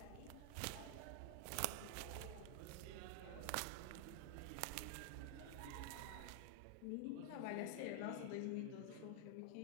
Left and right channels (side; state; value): both; different; correlation 0.00